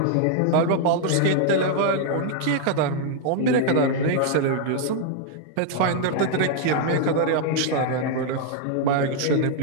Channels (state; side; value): different; both; correlation -0.01